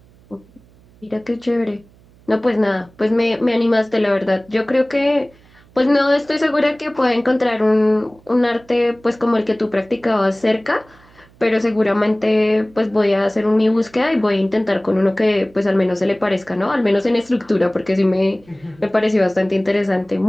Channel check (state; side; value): noise; right; hum, 28 dB below the sound